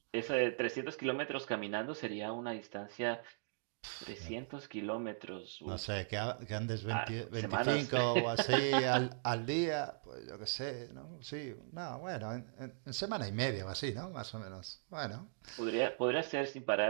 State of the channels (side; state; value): left; silent; digital silence